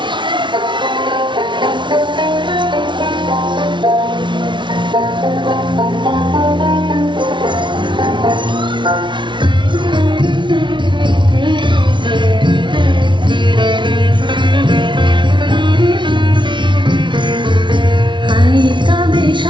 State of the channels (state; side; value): late; left; 0.24 ms